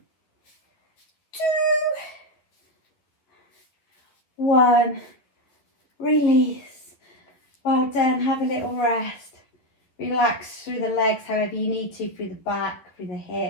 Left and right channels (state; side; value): late; right; 11 ms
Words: 2, 1. Release. Well done. Have a little rest. Relax through the legs however you need to, through the back, through the